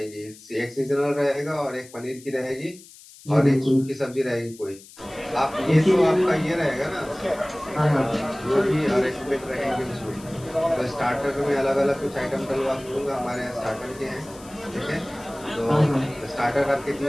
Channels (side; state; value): left; noise; hiss, 21 dB below the sound